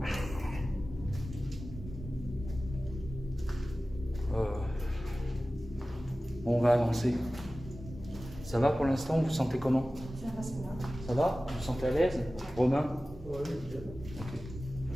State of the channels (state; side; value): normal; both; correlation 0.96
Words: On va avancer. Ça va pour l'instant? Vous vous sentez comment? Ça va, ça va. Ça va? Vous vous sentez à l'aise? Romain? Ouais, nickel. Ok.